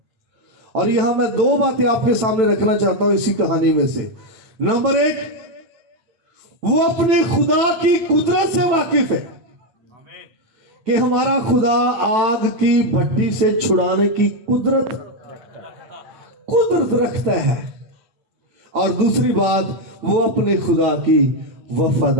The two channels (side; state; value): left; late; 9.1 ms